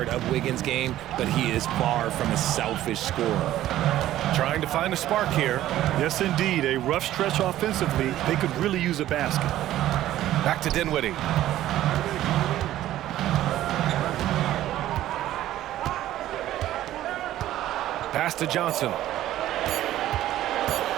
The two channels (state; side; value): quieter; left; 13.6 dB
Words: of Wiggins' game, but he is far from a selfish scorer. Trying to find a spark here. Yes, indeed. A rough stretch offensively. They could really use a basket. Back to Dinwiddie. Pass to Johnson.